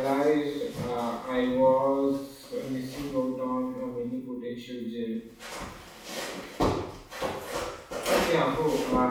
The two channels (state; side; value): identical; both; correlation 1.00